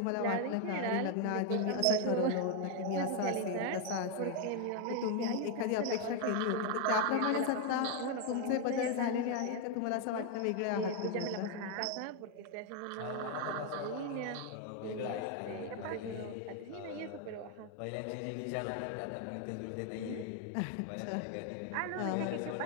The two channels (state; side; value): different; both; correlation 0.01